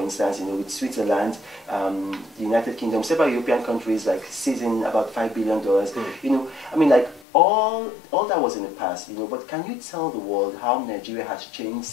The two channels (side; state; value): right; drops out; at 7.2 s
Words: instance, you know, with Switzerland, the United Kingdom, several European countries, like, seizing about $5 billion. You know, I mean, like, all that was in the past, you know, but can you tell the world how Nigeria has changed